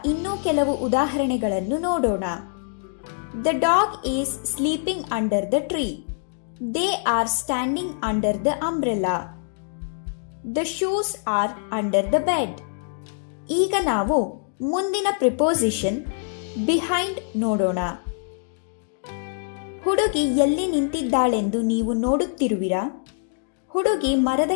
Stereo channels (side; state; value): right; silent; digital silence